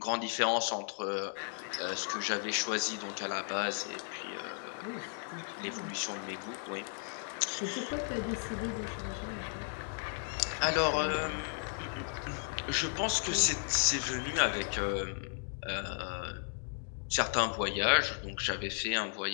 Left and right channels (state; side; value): silent; right; 54 dB below the other